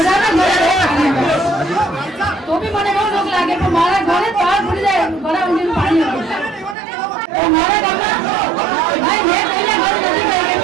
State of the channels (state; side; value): drops out; left; at 6.8 s